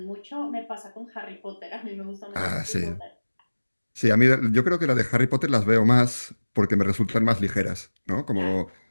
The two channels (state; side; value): inverted; both; correlation -1.00